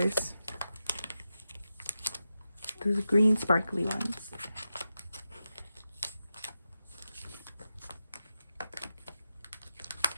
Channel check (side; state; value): both; inverted; correlation -0.89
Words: Those green sparkly ones.